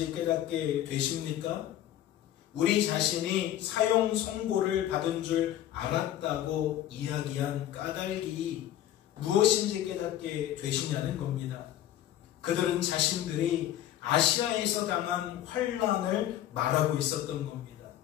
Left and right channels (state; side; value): quieter; right; 12.2 dB